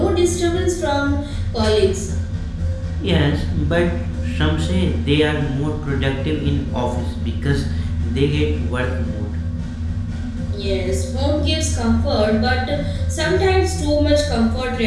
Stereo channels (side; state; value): both; identical; correlation 1.00